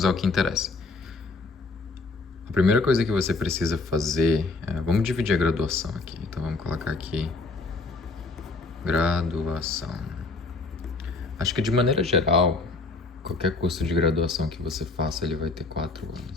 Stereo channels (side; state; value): right; quieter; 3.7 dB